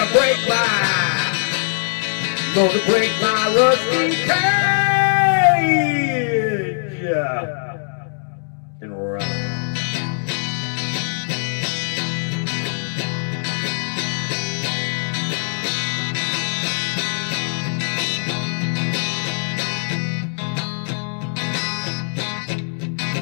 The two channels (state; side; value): silent; right; 65 dB below the other